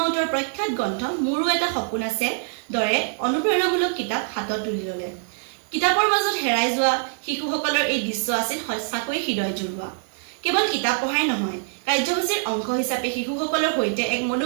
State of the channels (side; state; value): left; silent; 63 dB below the other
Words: প্ৰখ্যাত গ্ৰন্থ মোৰো এটা সপোন আছে দৰে অনুপ্ৰেৰণামূলক কিতাপ হাতত তুলি ল'লে কিতাপৰ মাজত হেৰাই যোৱা শিশুসকলৰ এই দৃশ্য আছিল সঁচাকৈ হৃদয় জুৰুৱা কেৱল কিতাপ পঢ়াই নহয় কাৰ্যসূচীৰ অংশ হিচাপে শিশুসকলৰ সৈতে এক